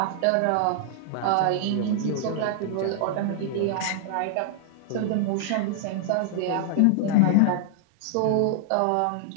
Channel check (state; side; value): different; both; correlation -0.01